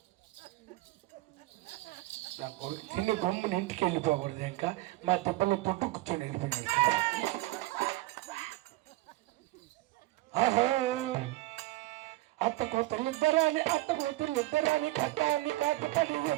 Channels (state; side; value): quieter; left; 18.6 dB